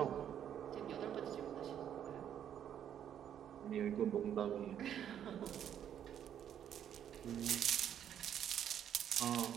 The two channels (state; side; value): quieter; left; 9.7 dB